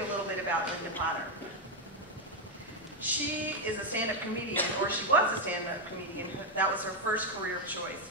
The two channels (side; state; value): both; normal; correlation 0.03